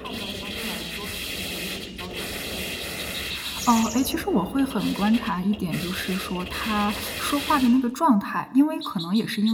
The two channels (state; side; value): identical; both; correlation 1.00